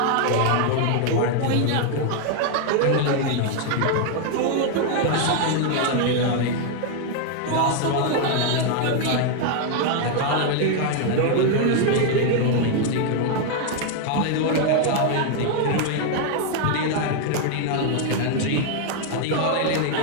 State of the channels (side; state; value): both; different; correlation 0.00